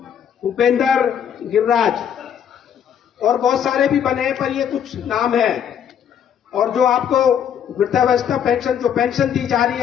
उपेंद्र, गिरिराज, और बहुत सारे भी बने हैं, पर ये कुछ नाम है। और जो आपको वृद्धावस्था पेंशन, जो पेंशन दी जा रही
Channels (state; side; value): quieter; right; 8.7 dB